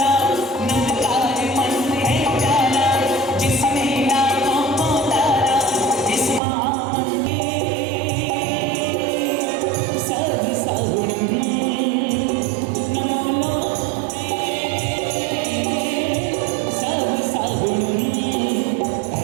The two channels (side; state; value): left; drops out; at 6.4 s